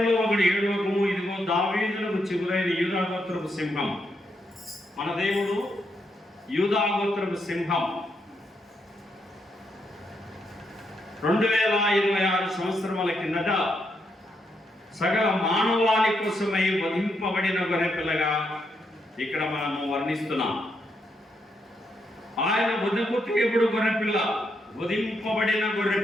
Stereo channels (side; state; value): both; normal; correlation 0.79